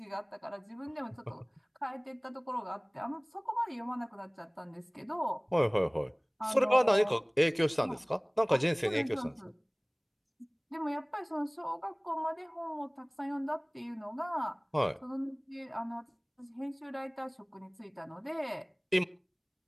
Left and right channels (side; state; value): both; identical; correlation 1.00